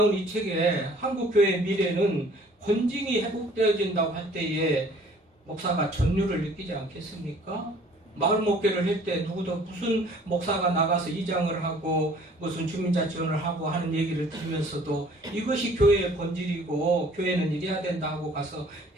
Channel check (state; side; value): normal; both; correlation 0.54